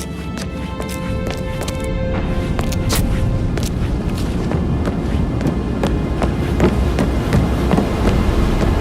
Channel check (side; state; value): both; identical; correlation 1.00